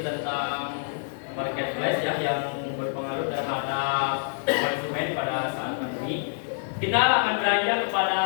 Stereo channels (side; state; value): right; silent; 56 dB below the other